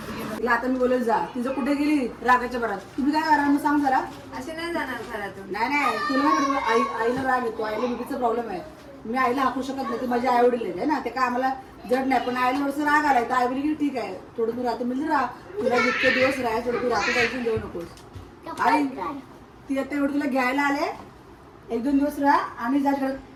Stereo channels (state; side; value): identical; both; correlation 1.00